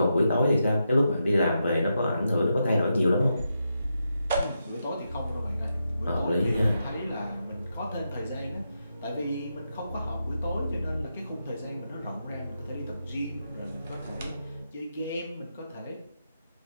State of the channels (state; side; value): inverted; both; correlation -0.85